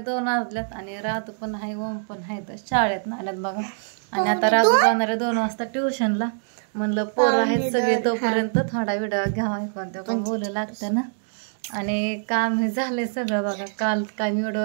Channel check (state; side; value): silent; left; digital silence